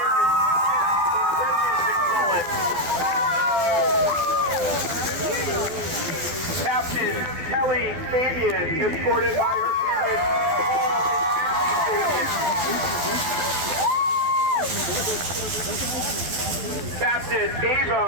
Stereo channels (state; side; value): late; left; 12 ms